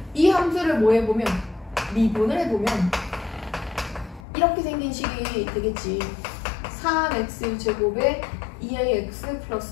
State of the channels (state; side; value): drops out; right; at 4.2 s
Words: 이 함수를 뭐 해보면? 미분을 해보면 이렇게 생긴 식이 되겠지. 3x제곱에 2ax